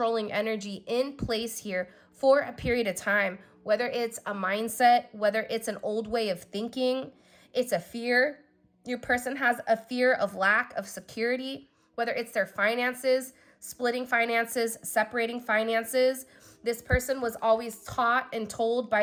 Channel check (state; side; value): identical; both; correlation 1.00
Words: energy in place here for a period of time, whether it's a mindset, whether it's an old way of thinking, it's a fear. Your person has a fear of lack of security, whether it's their finances, splitting finances, separating finances. This person was always taught and told